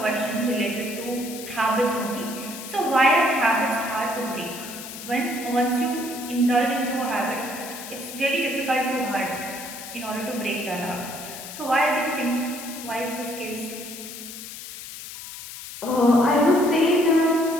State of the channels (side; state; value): left; noise; hiss, 11 dB below the sound